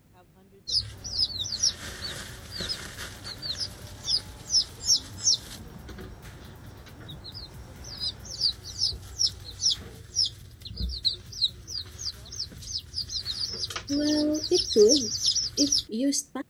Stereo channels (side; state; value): both; identical; correlation 1.00